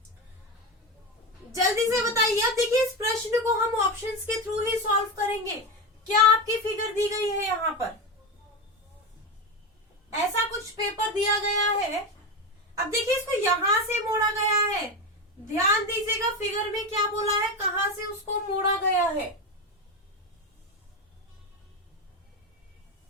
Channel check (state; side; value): normal; both; correlation 0.17